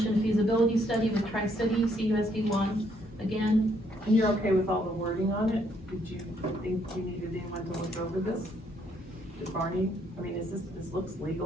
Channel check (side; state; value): both; normal; correlation 0.70